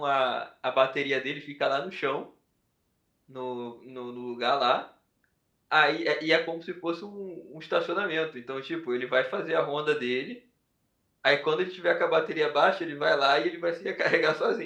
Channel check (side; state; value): both; identical; correlation 1.00